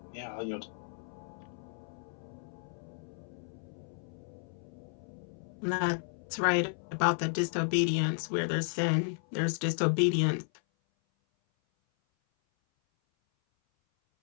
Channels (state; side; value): silent; right; 55 dB below the other